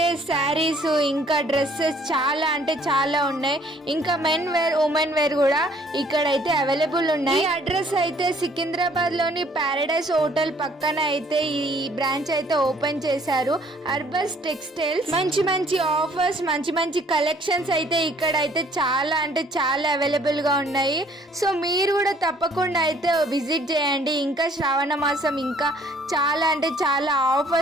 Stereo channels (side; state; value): both; normal; correlation 0.60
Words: శారీస్ ఇంకా డ్రెస్సెస్ చాలా అంటే చాలా ఉన్నాయి. ఇంకా మెన్ వేర్, ఉమెన్ వేర్ కూడా ఇక్కడైతే అవైలబుల్ ఉన్నాయి. ఈ అడ్రస్ అయితే సికింద్రాబాద్ లోని పారడైస్ హోటల్ పక్కన అయితే ఈ బ్రాంచ్ అయితే ఓపెన్ చేశారు. అర్బస్ టెక్స్టైల్స్. మంచి మంచి ఆఫర్స్, మంచి మంచి కలెక్షన్స్ అయితే ఇక్కడ అయితే చాలా అంటే చాలా అవైలబుల్ గా ఉన్నాయి. సో మీరు కూడా తప్పకుండా అయితే విజిట్ చేయండి. ఇంకా శ్రావణ మాసం ఇంకా చాలా అంటే చాలా